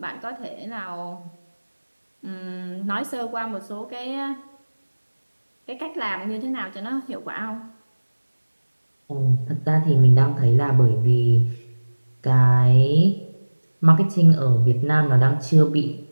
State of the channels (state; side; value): inverted; both; correlation -1.00